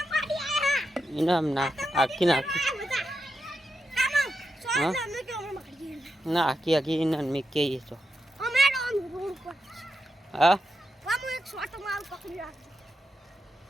ઇનામ ના આખી ના ના આખી આખી ઇનામ મે કહીએ તો હા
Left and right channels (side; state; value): both; normal; correlation 0.87